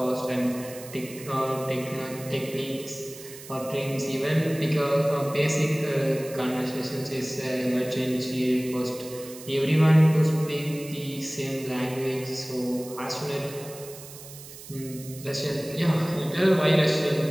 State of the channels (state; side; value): noise; right; hiss, 16 dB below the sound